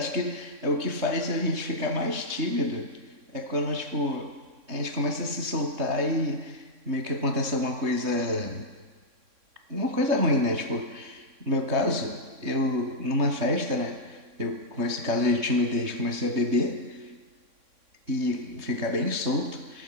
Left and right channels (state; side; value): late; left; 3.6 ms